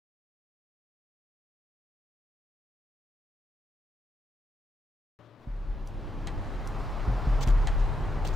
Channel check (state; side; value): normal; both; correlation 0.82